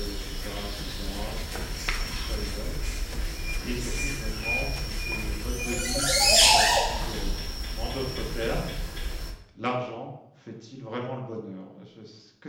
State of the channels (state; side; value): identical; both; correlation 1.00